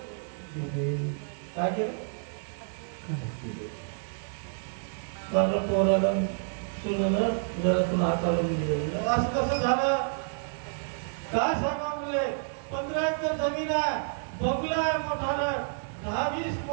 दिले. काय केलं? माझं पोराला सुनेनं घरातून हाकालून दिले. असं कसं झालं? काय सांगा म्हणले? 15 एकर जमीन आहे, बंगला आहे मोठा, 10-20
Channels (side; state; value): left; silent; 58 dB below the other